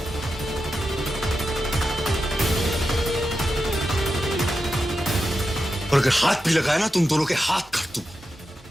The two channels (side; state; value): both; normal; correlation 0.89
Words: और अगर हाथ भी लगाया ना, तुम दोनों के हाथ काट दूं।